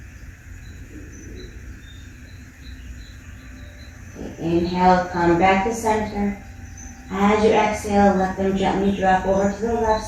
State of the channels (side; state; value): both; identical; correlation 1.00